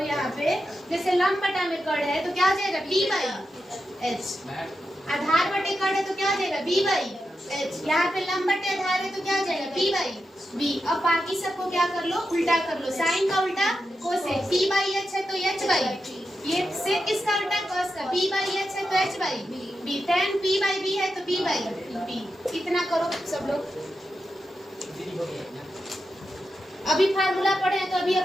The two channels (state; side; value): normal; both; correlation 0.88